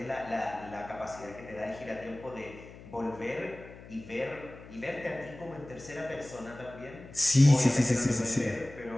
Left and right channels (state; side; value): noise; left; hum, 17 dB below the sound